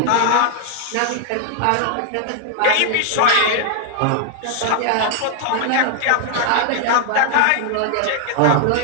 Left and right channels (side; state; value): both; different; correlation 0.00